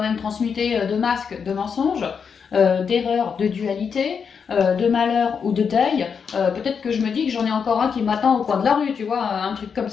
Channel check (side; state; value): right; quieter; 6.4 dB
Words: même transmuté de masques, de mensonges, d'erreurs, de dualité, de malheur ou de deuil. Peut-être que je me dis que j'en ai encore un qui m'attend au coin de la rue, tu vois, un truc comme